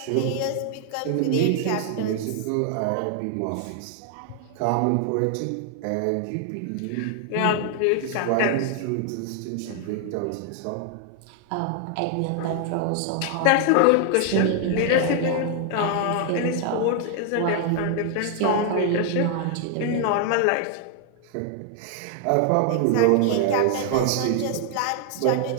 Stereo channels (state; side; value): different; both; correlation 0.00